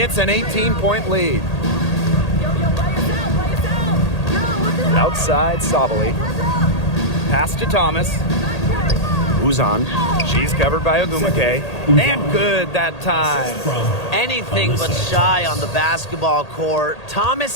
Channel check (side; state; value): right; late; 1.8 ms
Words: an 18-point lead. Outside Sabali. Pass to Thomas. Uzan. She's covered by Ogumake. And good that time. Anything but shy on the basketball court.